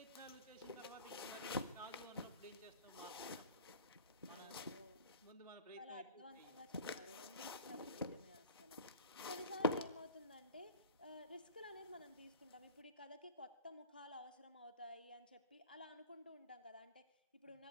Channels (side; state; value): both; inverted; correlation -0.40